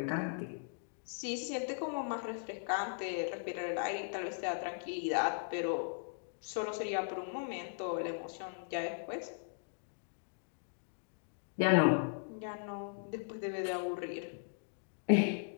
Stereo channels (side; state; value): right; silent; digital silence